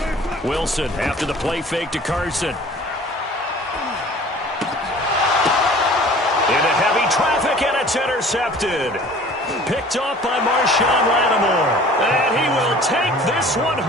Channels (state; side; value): normal; both; correlation 0.47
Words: Wilson after the play fake to Carson. Into heavy traffic, and it's intercepted. Picked off by Marshawn Lattimore. And he will take this one